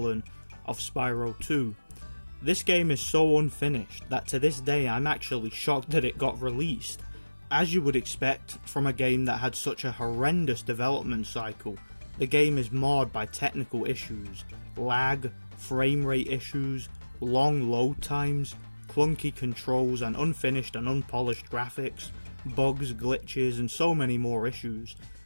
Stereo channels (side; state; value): both; inverted; correlation -1.00